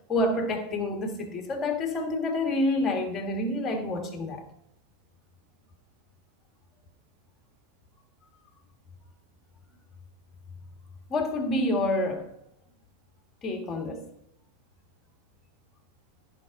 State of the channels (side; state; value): both; normal; correlation 0.35